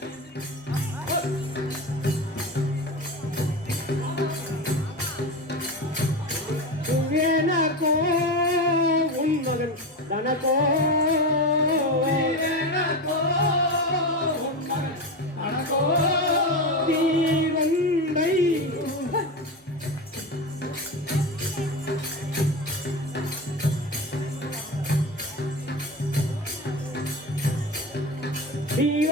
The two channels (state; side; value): normal; both; correlation 0.22